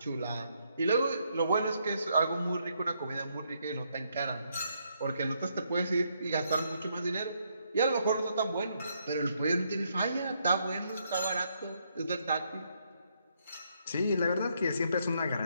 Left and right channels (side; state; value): both; inverted; correlation -0.75